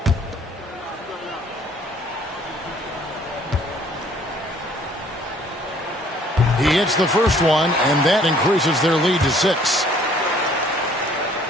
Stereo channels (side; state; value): both; normal; correlation 0.58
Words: He hits the first one, and that increases their lead to 6.